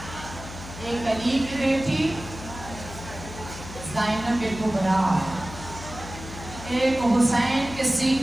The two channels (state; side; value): noise; left; hum, 13 dB below the sound